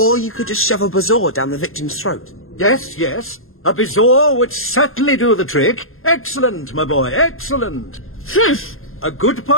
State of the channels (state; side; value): late; right; 0.61 ms